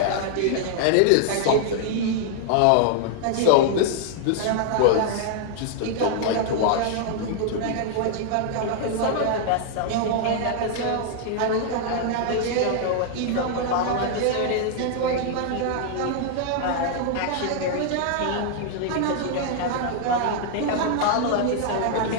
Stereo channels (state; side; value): different; both; correlation 0.00